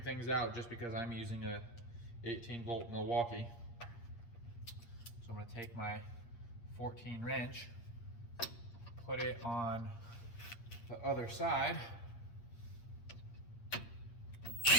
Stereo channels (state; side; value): late; right; 8.6 ms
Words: things out just because I'm using a 18-volt Milwaukee. So I'm gonna take my 14 wrench, put it on the other side,